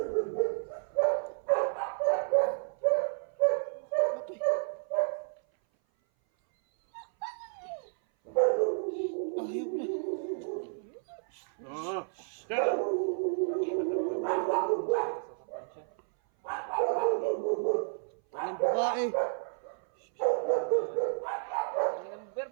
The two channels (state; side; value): silent; left; 57 dB below the other